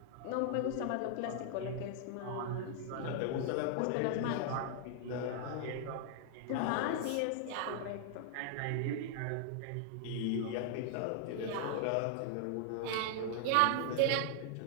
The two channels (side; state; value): both; different; correlation 0.00